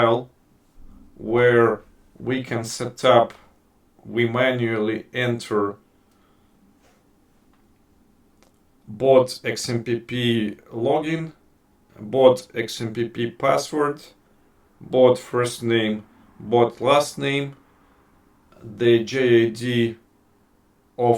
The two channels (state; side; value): identical; both; correlation 1.00